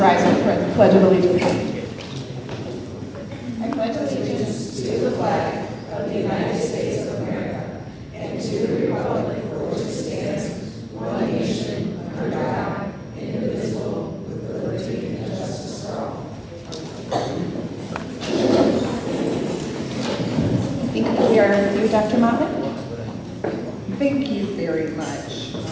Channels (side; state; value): both; identical; correlation 1.00